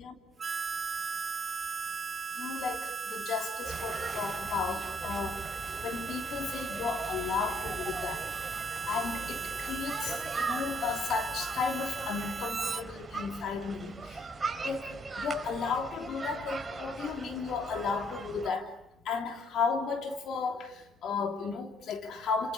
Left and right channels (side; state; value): both; normal; correlation 0.68